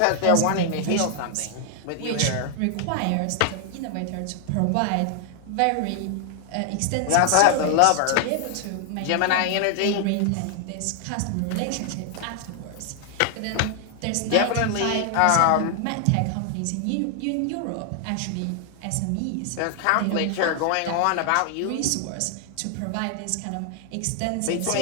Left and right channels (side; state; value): both; different; correlation 0.00